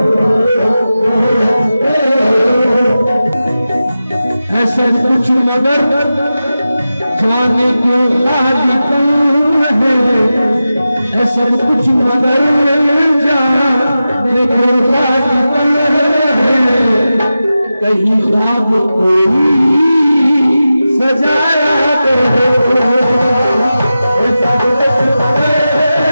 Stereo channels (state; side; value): inverted; both; correlation -0.93